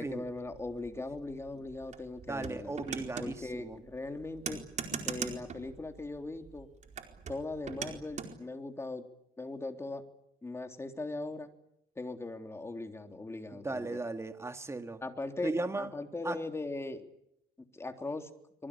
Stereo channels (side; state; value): both; normal; correlation 0.76